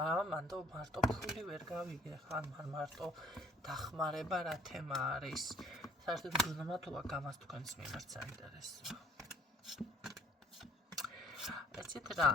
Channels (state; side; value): normal; both; correlation 0.57